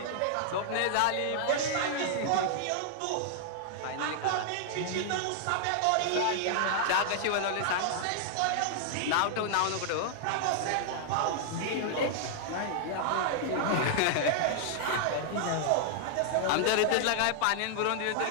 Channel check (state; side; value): different; both; correlation -0.01